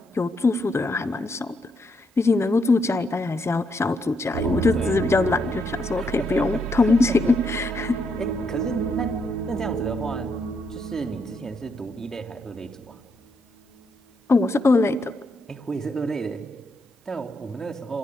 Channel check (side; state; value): both; normal; correlation 0.78